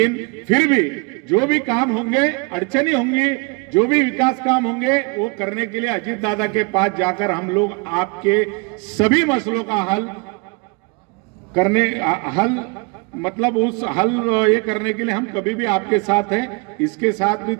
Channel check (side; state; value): left; quieter; 30.6 dB